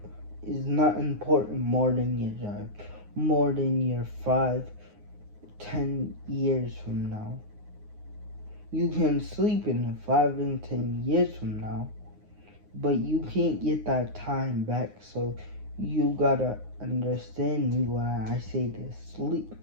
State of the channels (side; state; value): left; late; 9.6 ms